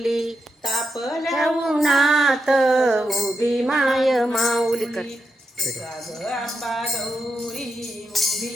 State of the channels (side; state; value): both; normal; correlation 0.84